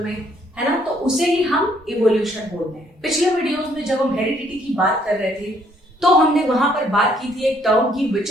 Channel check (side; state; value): both; normal; correlation 0.67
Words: में, है ना, तो उसे ही हम इवोल्यूशन बोलते हैं. पिछले वीडियोस में जब हम हेरिडिटी की बात कर रहे थे तो हमने वहां पर बात की थी एक टर्म की